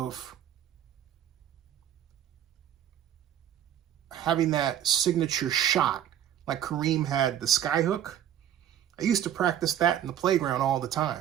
having that signature shot like Kareem had the skyhook. I used to practice that in the playground all the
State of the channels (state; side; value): quieter; left; 10.5 dB